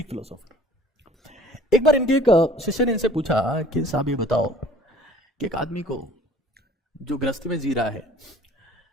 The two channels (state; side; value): normal; both; correlation 0.51